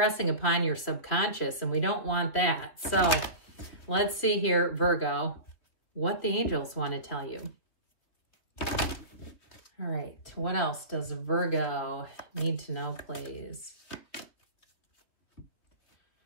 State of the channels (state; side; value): late; right; 3.2 ms